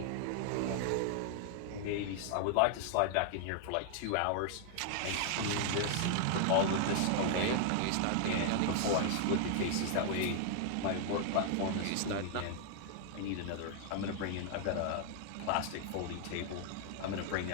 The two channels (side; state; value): both; different; correlation 0.00